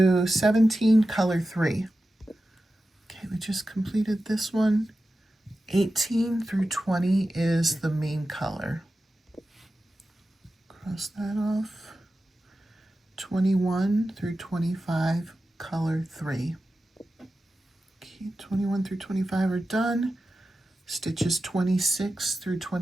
17, color 3. Okay, we just completed this one. 18 through 20 is the main color. Cross that off. 21 through 25, color 3. Okay, 21 through 25 are done. Stitches 26 through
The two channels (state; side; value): normal; both; correlation 0.92